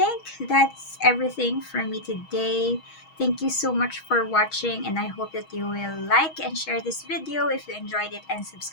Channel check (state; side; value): late; right; 6.3 ms